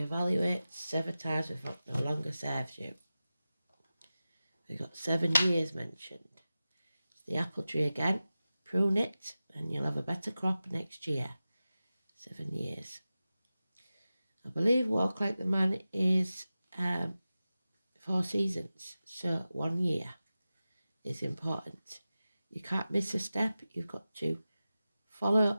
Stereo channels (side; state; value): both; inverted; correlation -0.95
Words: sever ties with what no longer serves you. We've got 7 years mentioned. It's the apple tree again. Prune it and you'll have a better crop next year. 7 years. I believe walk like the man is 4 seasons. So 1 year is important. You can't miss a step. You've got to